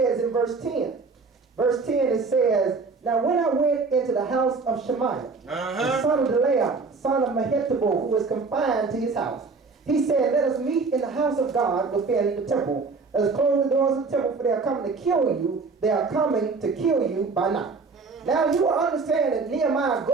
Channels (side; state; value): left; quieter; 4.4 dB